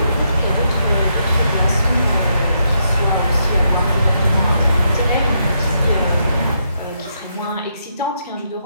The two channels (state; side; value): inverted; both; correlation -0.78